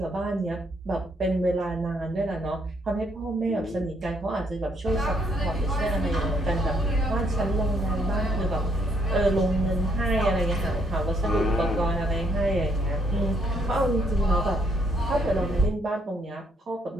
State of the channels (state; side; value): normal; both; correlation 0.71